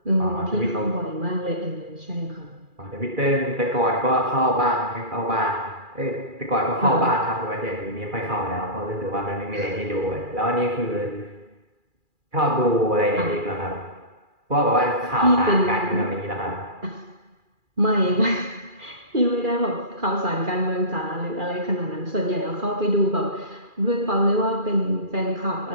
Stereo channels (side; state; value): left; late; 2.4 ms